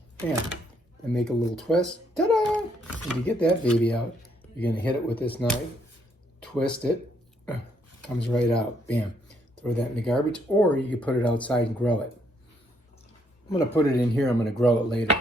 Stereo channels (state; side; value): normal; both; correlation 0.71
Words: and make a little twist. Ta-da! When you get that baby out, you're gonna hit it with this knife, twist it, comes right out. Bam! Throw that in the garbage, or you can put it outside and grow it. I'm going to put it in here. I'm going to grow it later.